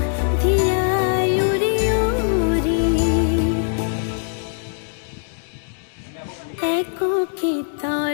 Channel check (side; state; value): right; silent; digital silence